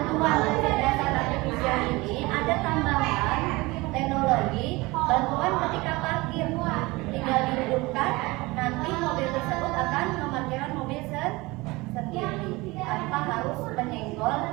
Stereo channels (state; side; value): quieter; left; 22.5 dB